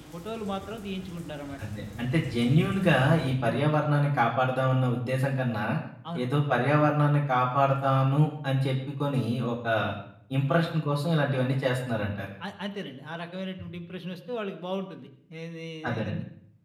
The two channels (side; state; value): both; identical; correlation 1.00